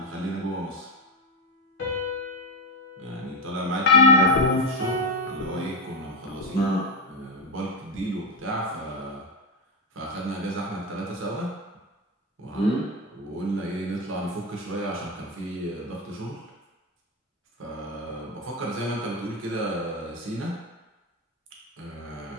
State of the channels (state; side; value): normal; both; correlation 0.13